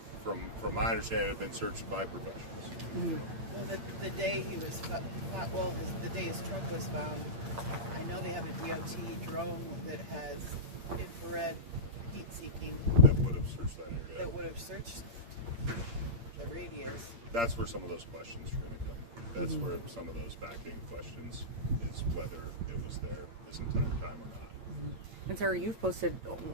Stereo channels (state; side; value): late; left; 8.6 ms